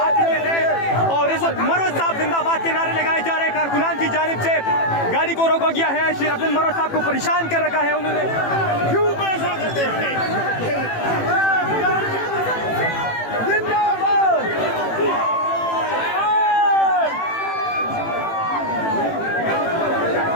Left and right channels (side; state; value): right; late; 18 ms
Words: चुके हैं और इस वक्त मरोज साहब जिंदाबाद के नारे लगाए जा रहे हैं। कारकुनान की जानिब से गाड़ी को रोका गया है। शेर अब्दुल मरोज साहब को परेशान कर रखा है उन्होंने। क्यों पैसा करते हैं?